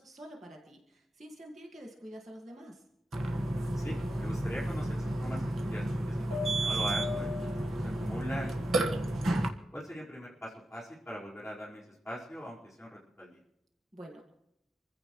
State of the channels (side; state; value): both; normal; correlation 0.89